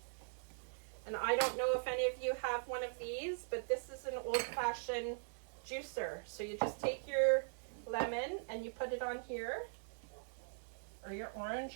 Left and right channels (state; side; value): silent; left; digital silence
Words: And I don't know if any of you have one of these, but this is an old-fashioned juicer. So you just take your lemon and you put it on here, or your